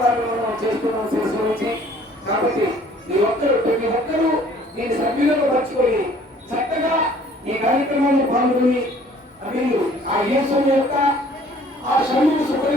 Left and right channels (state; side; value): normal; both; correlation 0.55